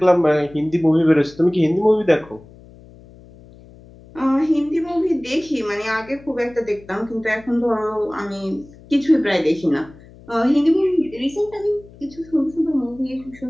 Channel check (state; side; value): noise; left; hum, 22 dB below the sound